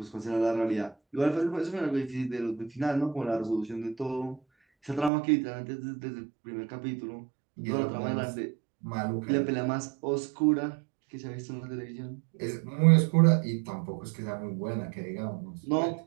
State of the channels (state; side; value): drops out; left; at 5.1 s